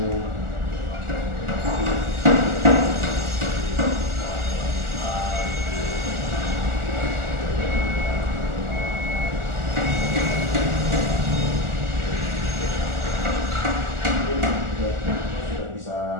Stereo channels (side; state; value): left; late; 1.4 ms